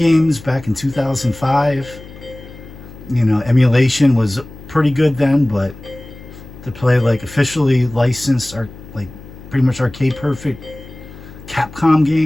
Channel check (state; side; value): noise; left; hum, 17 dB below the sound